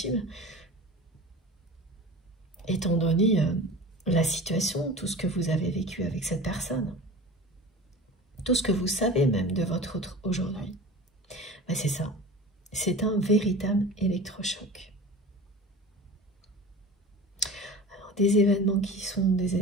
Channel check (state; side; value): normal; both; correlation 0.36